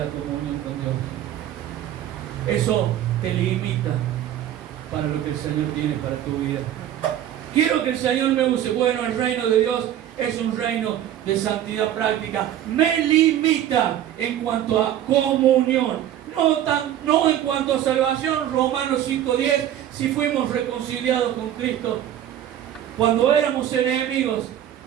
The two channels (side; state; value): left; quieter; 11.3 dB